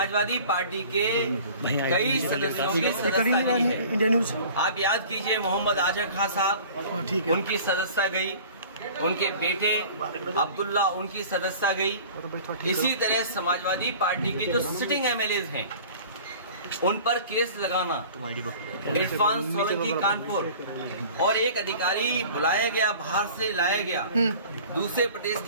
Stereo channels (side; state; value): both; inverted; correlation -0.44